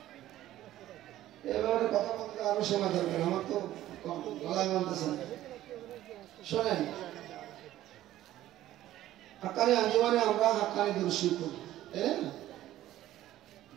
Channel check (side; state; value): left; quieter; 14.0 dB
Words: এবারে কথা বলতে আরো সময় দরকার, আমার তো গলায় মানতেছে না। শোনেন, হাক্কানী আঞ্জুমানে আমরা হাক্কানী দুরূদ শরীফ পড়ি, তাই না?